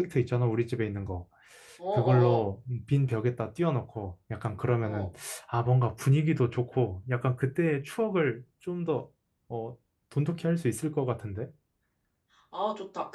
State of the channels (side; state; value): both; identical; correlation 1.00